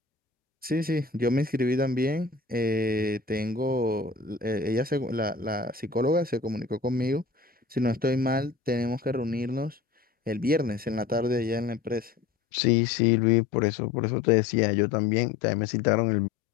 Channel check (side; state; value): right; quieter; 4.6 dB